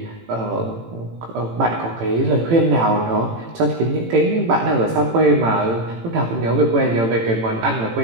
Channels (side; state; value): left; late; 18 ms